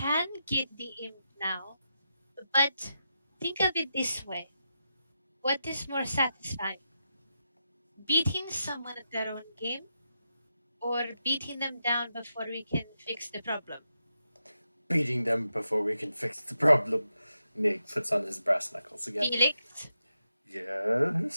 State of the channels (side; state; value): both; inverted; correlation -0.86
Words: get the imp now, but think of it this way. What is more satisfying? Beating someone at their own game, or beating them down before we can fix the problem? Beating them before we can fix the problem. Nick puts on his brass knuckles again. Felix?